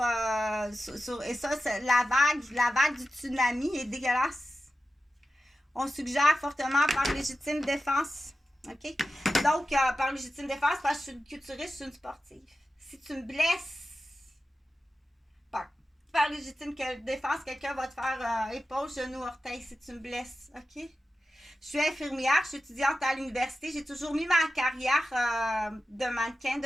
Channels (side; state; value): both; normal; correlation 0.92